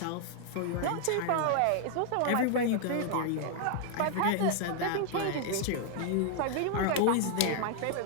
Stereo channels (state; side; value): different; both; correlation 0.00